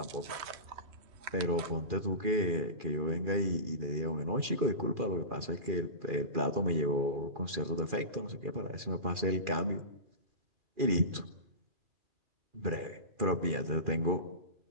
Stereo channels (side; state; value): left; late; 2.4 ms